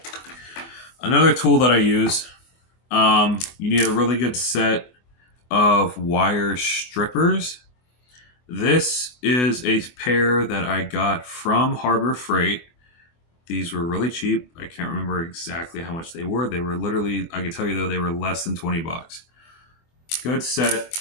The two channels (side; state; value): right; late; 24 ms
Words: Another tool that I use, you need a really good set of wire strippers. This is a pair that I got from Harbor Freight. These were really cheap. I can't remember exactly how much they were. They were literally, I can tell you though, they were less than $20. Good set